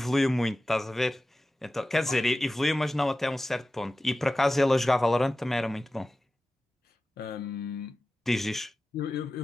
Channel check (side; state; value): both; normal; correlation 0.95